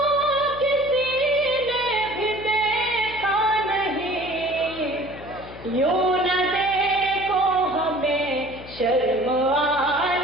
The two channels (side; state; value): left; noise; hum, 17 dB below the sound